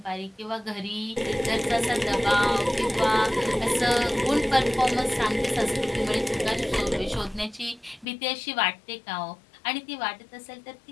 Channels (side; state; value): right; drops out; at 8.1 s